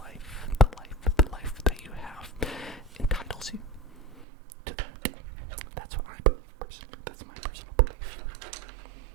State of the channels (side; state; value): left; drops out; at 4.2 s